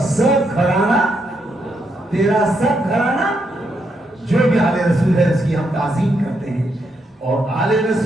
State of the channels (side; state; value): both; normal; correlation 0.79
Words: سب گھرانہ، تیرا سب گھرانہ، جو بھی آل رسول ہے اس کی ہم تعظیم کرتے ہیں. اور آل